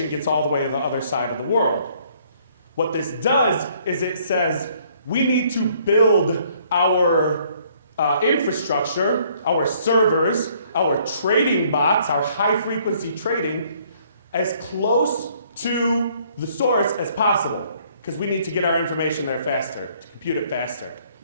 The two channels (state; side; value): inverted; both; correlation -0.63